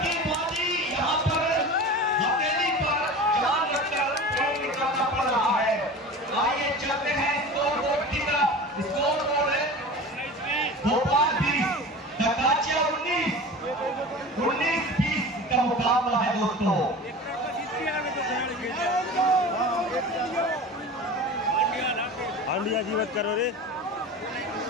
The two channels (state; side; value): normal; both; correlation 0.34